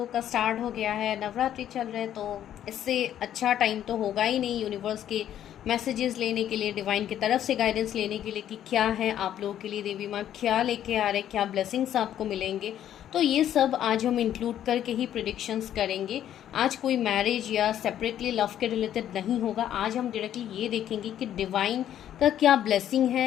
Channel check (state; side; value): quieter; right; 10.9 dB